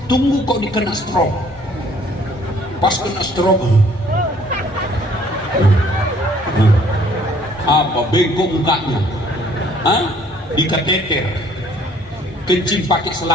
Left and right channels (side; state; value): both; normal; correlation 0.59